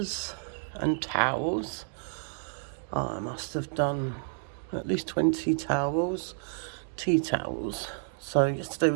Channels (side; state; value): left; silent; digital silence